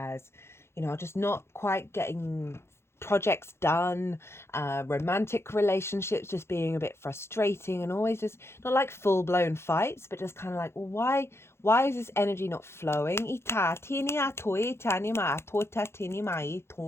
you know, just not quite getting projects done, romantic relationships just being a bit frustrating, and always just not like full-blown fights, but just kind of like, well, why is this energy not flowing?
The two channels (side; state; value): right; late; 0.12 ms